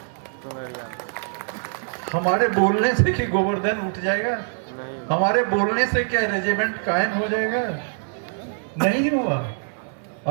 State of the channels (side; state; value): left; silent; 63 dB below the other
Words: हमारे बोलने से कि गोवर्धन उठ जाएगा? नहीं। हमारे बोलने से क्या रेजिमेंट कायम हो जाएगा? नहीं हुआ।